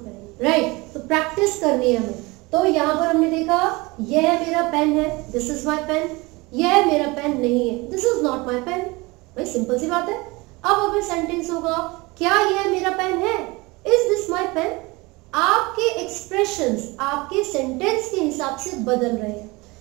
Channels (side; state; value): left; quieter; 24.0 dB